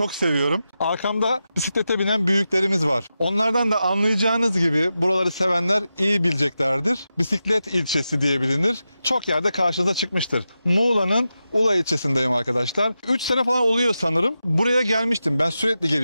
seviyorum. Arkamda bisiklete binen büyüklerimiz var. Onlardan da anlayacağınız gibi buraları sevenler iyi bileceklerdir. Bisiklet ilçesi diye bilinir. Çok yerde karşınıza çıkmıştır. Muğla'nın Ula ilçesindeyim arkadaşlar. 3 sene falan oluyor sanırım. Buraya gelmiştim. Ben sürekli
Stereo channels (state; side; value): inverted; both; correlation -0.90